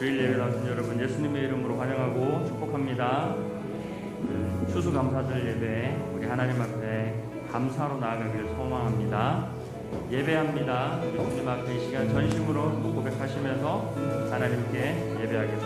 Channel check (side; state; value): both; identical; correlation 1.00